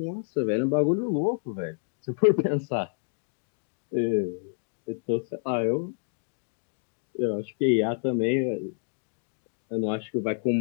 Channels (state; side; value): silent; right; digital silence